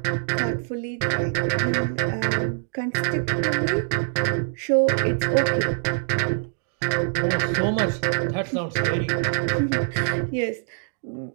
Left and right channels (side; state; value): left; silent; digital silence